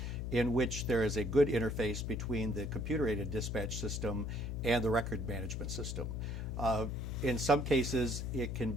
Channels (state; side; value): noise; left; hum, 3 dB below the sound